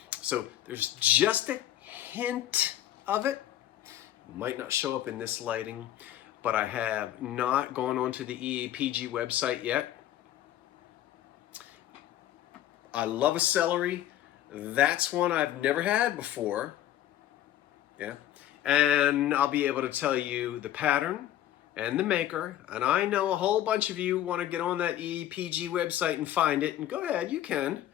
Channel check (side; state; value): right; quieter; 12.5 dB